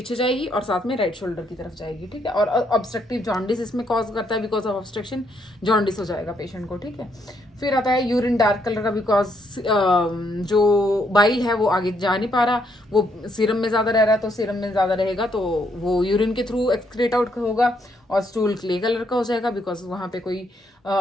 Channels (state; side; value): normal; both; correlation 0.74